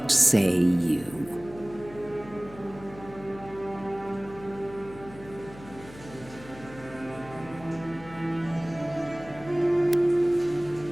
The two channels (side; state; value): left; noise; hum, 18 dB below the sound